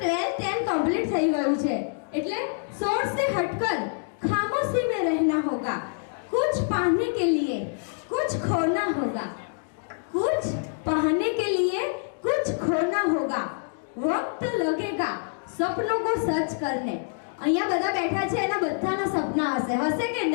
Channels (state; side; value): silent; right; digital silence